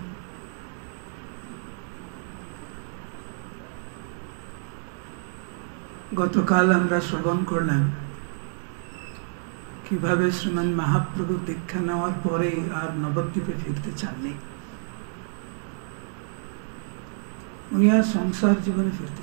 গতকাল আমরা শ্রবণ করলাম কিভাবে শ্রীমান মহাপ্রভু দীক্ষা নেওয়ার পরে আর নবদ্বীপে ফিরতে চাননি। উনি আর সংসার জীবনে ফিরতে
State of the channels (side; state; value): left; silent; digital silence